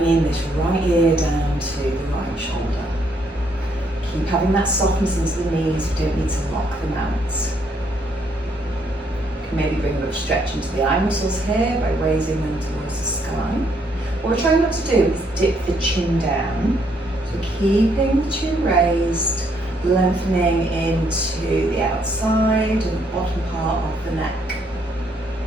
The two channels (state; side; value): normal; both; correlation 0.71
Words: this right ear down to the right shoulder. Keep having that softness into the knees, you don't need to lock them out. You can maybe bring a bit of stretch into the eye muscles here by raising them towards the sky. What we're trying not to do is dip the chin down. So keeping the chin raised, lengthening into the outside and bottom part of the neck.